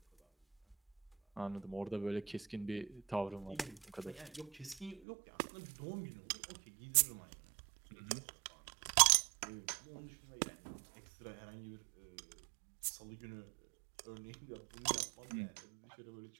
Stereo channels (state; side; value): drops out; left; at 5.0 s